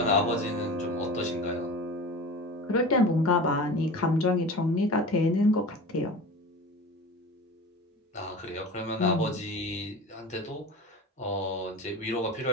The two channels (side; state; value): both; normal; correlation 0.34